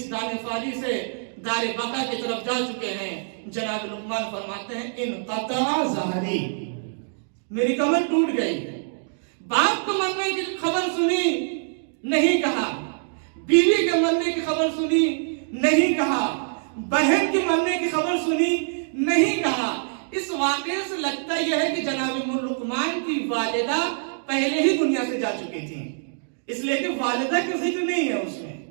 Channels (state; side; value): silent; left; digital silence